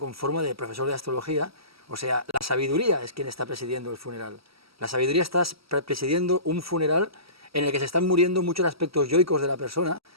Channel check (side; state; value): left; late; 0.76 ms